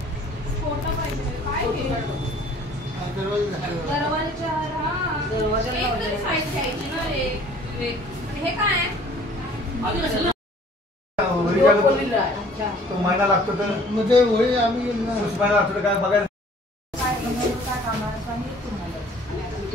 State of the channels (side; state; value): both; normal; correlation 0.54